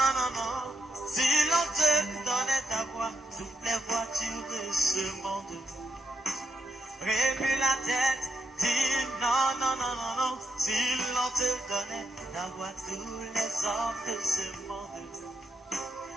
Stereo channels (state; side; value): normal; both; correlation 0.79